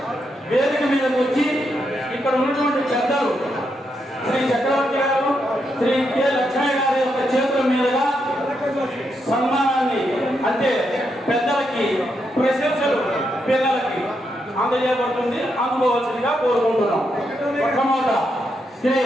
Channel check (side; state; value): both; normal; correlation 0.81